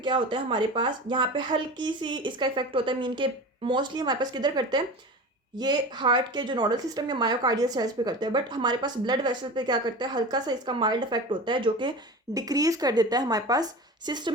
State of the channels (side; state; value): both; normal; correlation 0.32